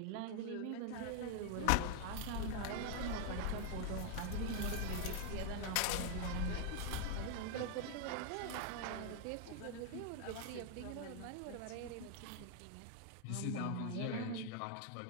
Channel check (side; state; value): both; different; correlation 0.00